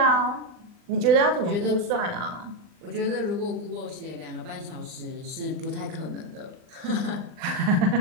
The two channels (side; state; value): left; late; 39 ms